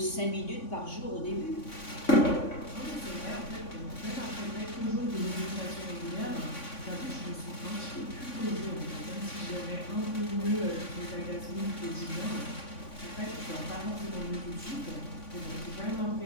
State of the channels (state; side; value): late; right; 3.5 ms